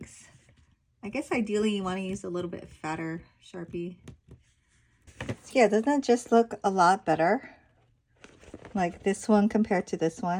I guess ideally you want to use a little bit fatter Sharpie. So yeah, doesn't it just look a lot better? Like this one compared to this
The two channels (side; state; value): both; identical; correlation 1.00